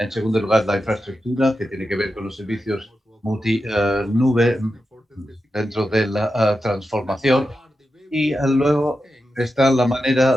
segundo lugar, la infraestructura, que tiene que ver con los servicios multi-nube dentro de la transformación. Y luego está la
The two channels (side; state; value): both; normal; correlation 0.90